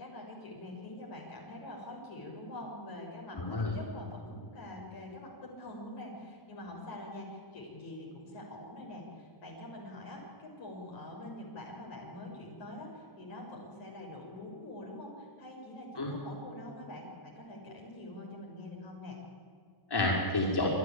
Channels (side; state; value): right; late; 1.1 ms